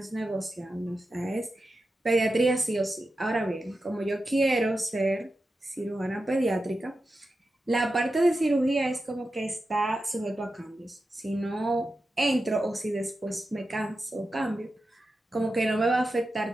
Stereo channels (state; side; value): normal; both; correlation 0.91